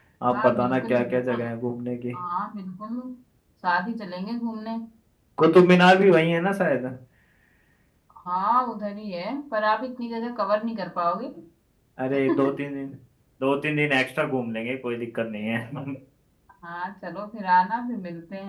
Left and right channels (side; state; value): both; identical; correlation 1.00